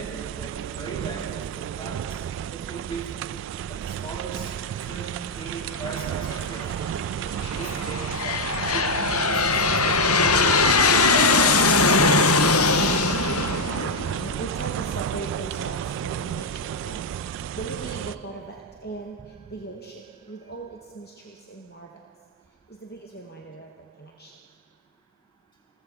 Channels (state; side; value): normal; both; correlation 0.01